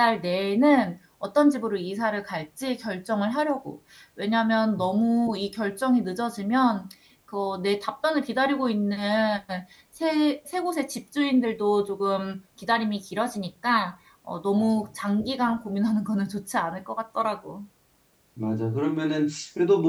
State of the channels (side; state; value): both; identical; correlation 1.00